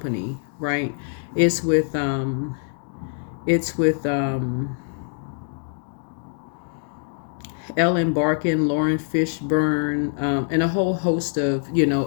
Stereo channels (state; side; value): silent; right; digital silence